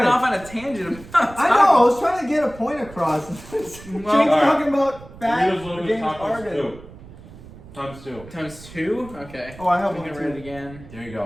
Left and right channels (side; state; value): right; noise; rumble, 18 dB below the sound